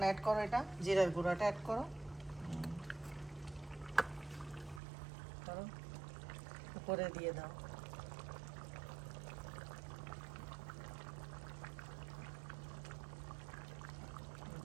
অ্যাড করো, এটা জিরার গুঁড়াটা অ্যাড করো, করো, উপরে দিয়ে দাও।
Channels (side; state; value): left; drops out; at 4.8 s